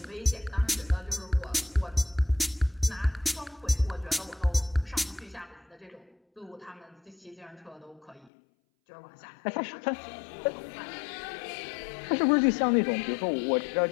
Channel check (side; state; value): right; drops out; at 8.3 s